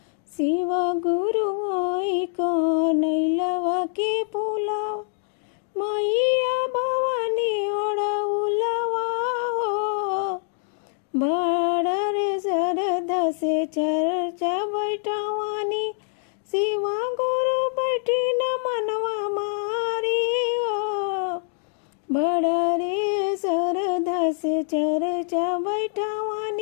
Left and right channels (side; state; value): right; silent; digital silence